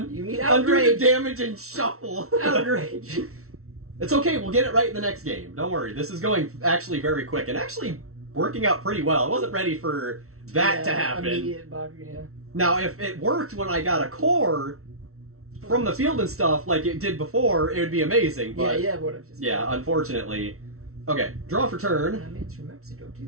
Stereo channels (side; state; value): left; late; 0.63 ms